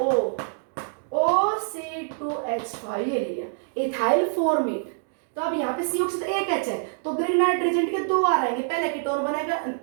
OC2H5 ये ले लिया, इथाइल फॉर्मेट, तो अब यहाँ पे CO से तो एक H है तो ग्रिग्नाइट रिएजेंट के दो आर आएंगे, पहले कीटोन बनेगा,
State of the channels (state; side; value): silent; left; digital silence